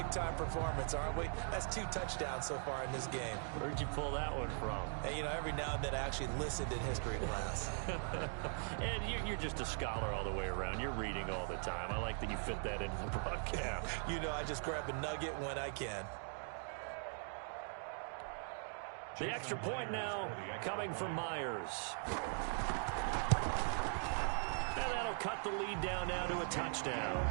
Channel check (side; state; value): left; silent; 50 dB below the other